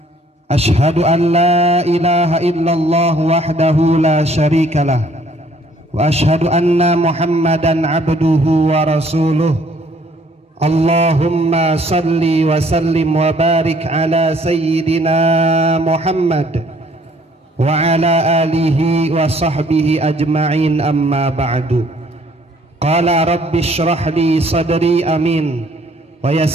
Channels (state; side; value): normal; both; correlation 0.61